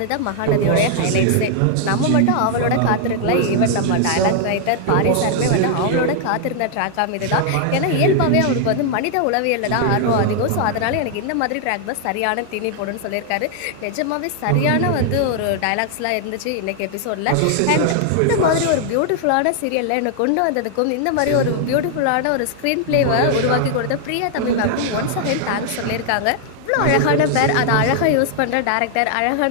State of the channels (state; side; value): different; both; correlation 0.00